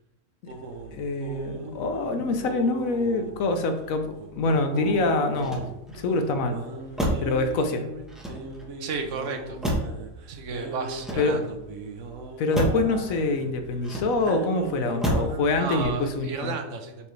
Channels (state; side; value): normal; both; correlation 0.00